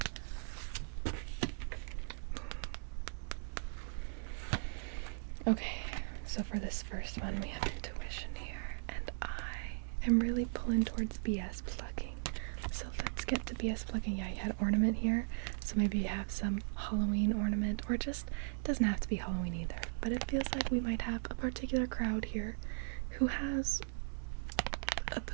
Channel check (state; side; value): silent; left; 52 dB below the other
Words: Okay, so for this first one we have intuition here, and I am really pulling towards BS plugging. So let's get to BS plugging. Yeah, you had ornament here, so maybe you have some Halloween ornament, or just, it doesn't have to be Halloween either, but it feels like we might have a particular crowd here who has a